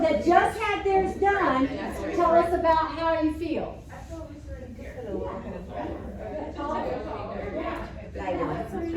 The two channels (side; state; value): both; identical; correlation 1.00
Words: that just had theirs done, tell us about how you feel.